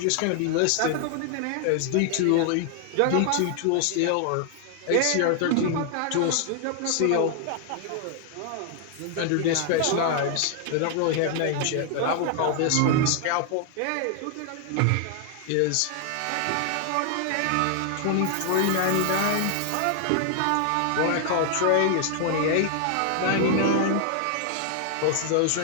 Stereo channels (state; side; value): different; both; correlation 0.00